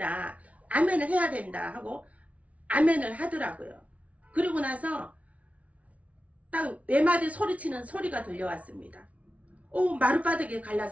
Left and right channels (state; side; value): late; left; 0.066 ms